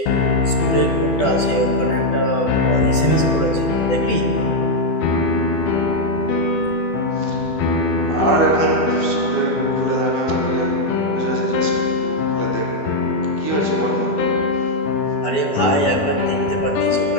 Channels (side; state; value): right; late; 12 ms